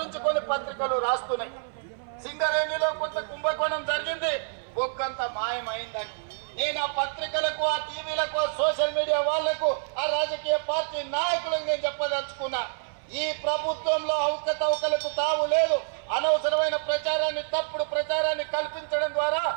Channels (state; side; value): silent; left; 58 dB below the other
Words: కొన్ని పత్రికలు రాస్తున్నాయి. సింగరేణిలో కొంత కుంభకోణం జరిగింది, బొక్కంత మాయమైందని. నేను ఆ పత్రికలకు, ఆ టీవీలకు, ఆ సోషల్ మీడియా వాళ్లకు, ఆ రాజకీయ పార్టీ నాయకులకు నేను చెప్పదలుచుకున్నా, ఈ ప్రభుత్వంలో అవకతవకలకు తావు లేదు. అనవసరమైన ప్రచారాన్ని, తప్పుడు ప్రచారాన్ని కల్పించడం ద్వారా